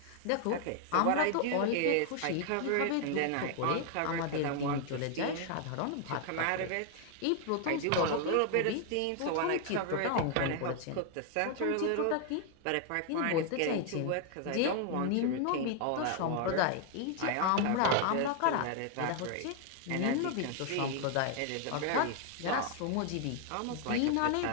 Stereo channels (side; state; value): both; different; correlation 0.00